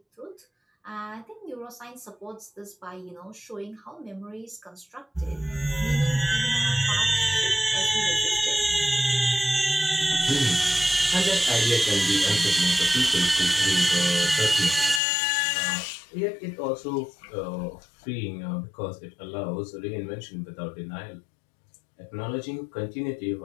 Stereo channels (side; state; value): right; drops out; at 15.0 s